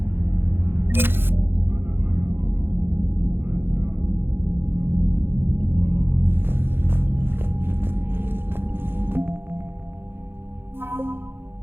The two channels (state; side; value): late; left; 0.10 ms